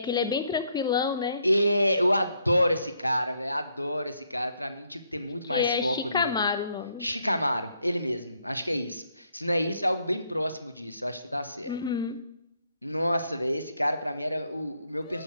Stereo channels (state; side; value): inverted; both; correlation -0.73